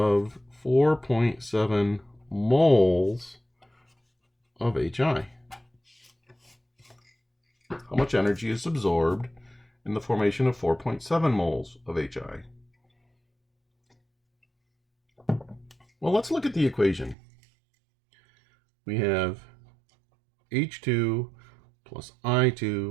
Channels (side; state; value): left; drops out; at 17.2 s